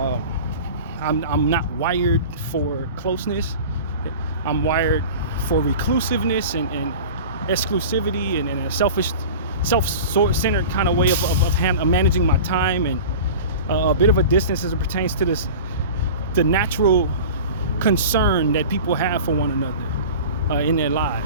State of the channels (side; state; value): both; inverted; correlation -0.36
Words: I'm not wired for closness. I'm wired for reclusiveness and exclusivity and a selfish, self-centered kind of way of managing my time, and a bit of a distance as it pertains to the natural concern that people have for one another in their